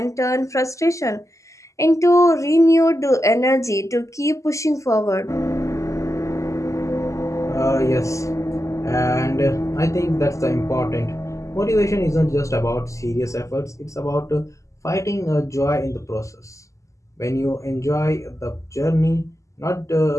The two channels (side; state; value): right; late; 0.15 ms